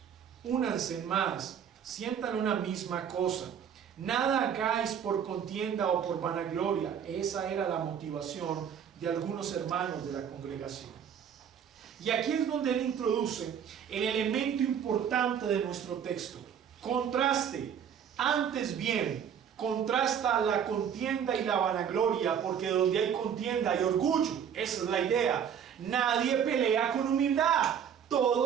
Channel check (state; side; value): quieter; left; 8.3 dB